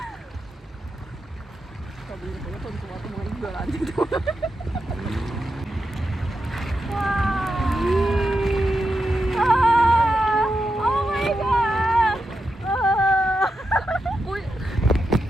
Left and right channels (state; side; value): normal; both; correlation 0.87